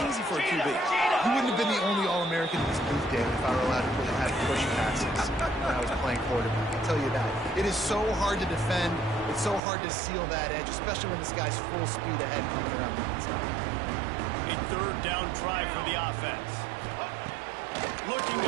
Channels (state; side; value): drops out; left; at 9.6 s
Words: easy for a QB. You wouldn't have been the only All-American in this booth, David, if I were allowed to have push passes when I was playing quarterback. I'll tell you that. It is so hard to defend. It's so hard to seal that edge, especially when this guy's full speed ahead coming around the inside. A 3rd down try for the offense. Looking